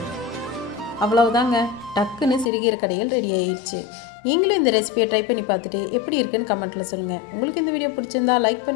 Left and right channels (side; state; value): right; drops out; at 2.5 s